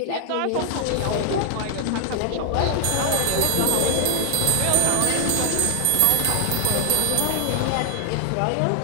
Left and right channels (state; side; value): different; both; correlation 0.00